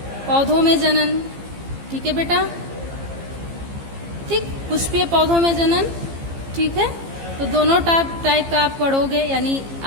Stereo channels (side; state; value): left; late; 15 ms